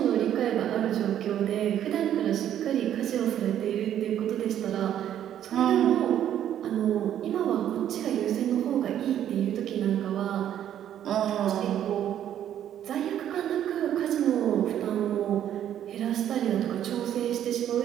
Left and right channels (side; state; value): left; quieter; 10.6 dB